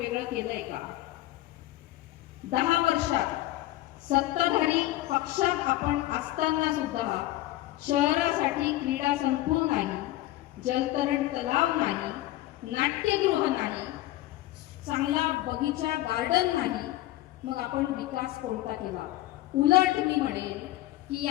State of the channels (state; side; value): quieter; right; 16.2 dB